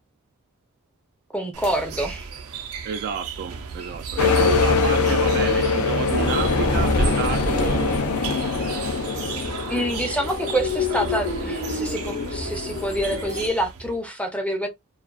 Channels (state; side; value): normal; both; correlation 0.17